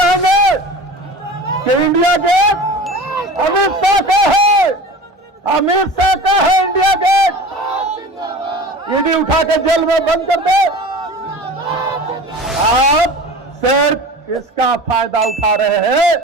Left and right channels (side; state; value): both; normal; correlation 0.36